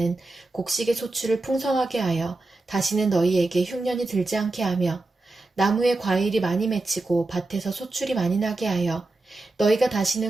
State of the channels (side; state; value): left; quieter; 3.0 dB